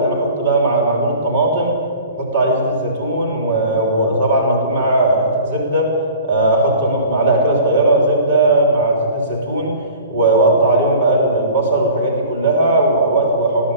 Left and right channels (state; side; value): inverted; both; correlation -0.44